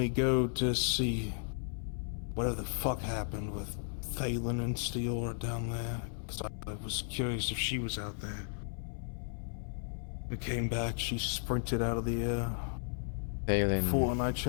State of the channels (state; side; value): silent; right; 55 dB below the other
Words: go to see whatever the fuck happened with Thalen and Steora down there, because I was curious if she was out there. We came back, she sprinted out of the fort and I